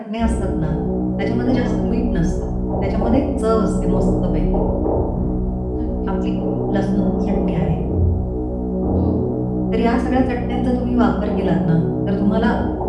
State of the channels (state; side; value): identical; both; correlation 1.00